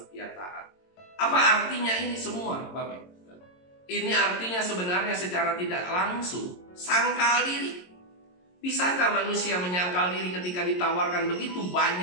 dia taat. Apa artinya ini semua Bapak? Ini artinya sebenarnya secara tidak langsung sangkal diri. Bisakah manusia menyangkal diri ketika ditawarkan begitu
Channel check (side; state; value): right; late; 22 ms